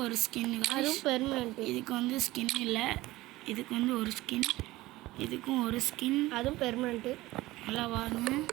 ஒரு ஸ்கின் அதுவும் பெர்மனெண்ட் இதுக்கு வந்து ஸ்கின் இல்லை இதுக்கு வந்து ஒரு ஸ்கின் இதுக்கும் ஒரு ஸ்கின் அதுவும் பெர்மனெண்ட்டு நல்லா பாருங்க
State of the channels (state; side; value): quieter; left; 18.2 dB